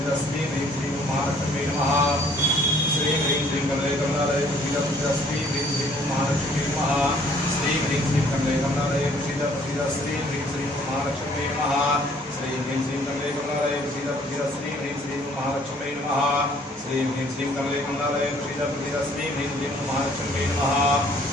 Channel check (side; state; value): both; normal; correlation 0.60